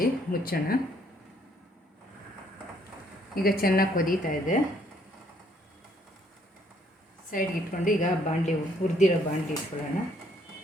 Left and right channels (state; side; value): normal; both; correlation 0.67